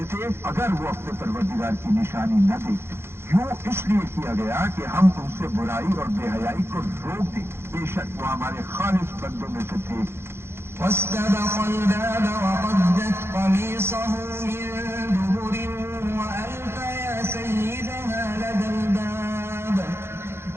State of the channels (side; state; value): left; late; 0.12 ms